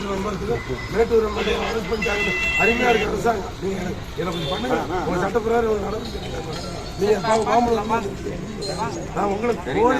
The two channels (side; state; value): both; identical; correlation 1.00